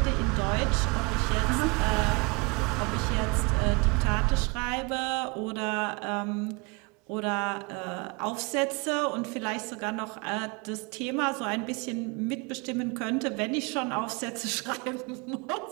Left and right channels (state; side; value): quieter; left; 29.2 dB